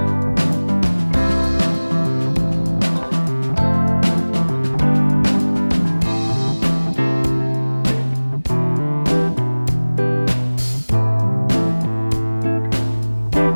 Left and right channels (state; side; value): inverted; both; correlation -1.00